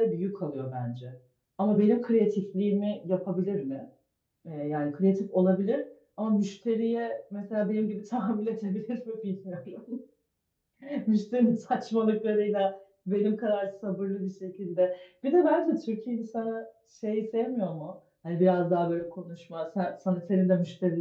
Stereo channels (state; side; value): identical; both; correlation 1.00